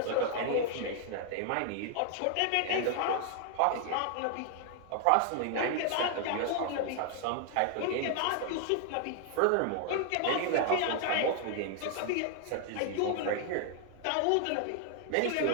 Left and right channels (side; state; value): both; different; correlation 0.00